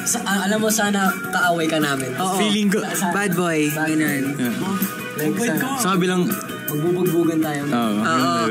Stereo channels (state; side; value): identical; both; correlation 1.00